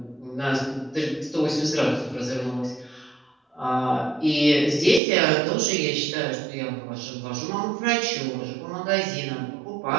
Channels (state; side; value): drops out; left; at 5.0 s